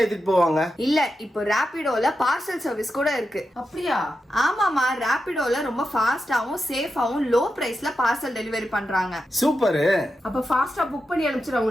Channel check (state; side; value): normal; both; correlation 0.89